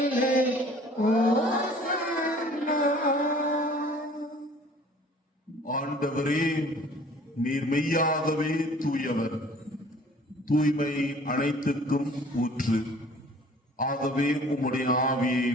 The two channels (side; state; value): both; normal; correlation 0.51